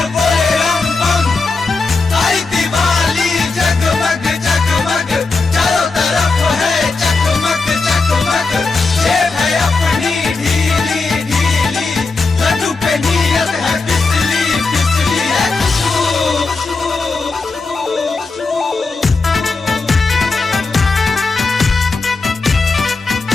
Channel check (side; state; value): right; quieter; 3.9 dB